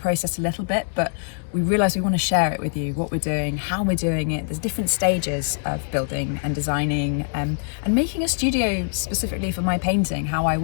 a little bit, but we realise we want to share it with you, what we're doing, how we're doing it. There's different stages of building and designing and making a studio specifically for my painting, how I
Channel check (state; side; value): silent; right; digital silence